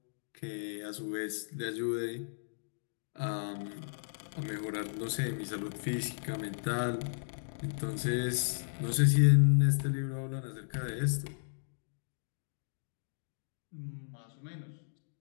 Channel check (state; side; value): silent; right; digital silence